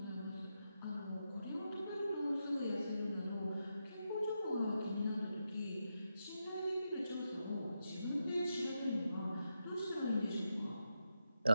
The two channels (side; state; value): both; inverted; correlation -0.86